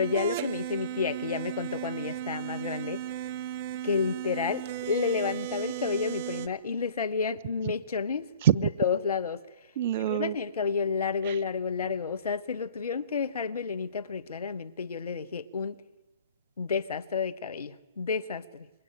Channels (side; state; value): both; inverted; correlation -0.47